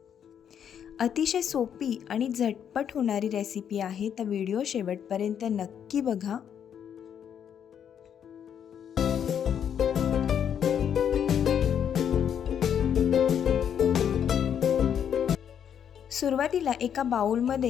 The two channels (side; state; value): right; quieter; 8.6 dB